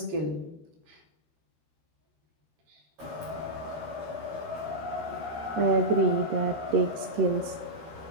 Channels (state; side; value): late; left; 13 ms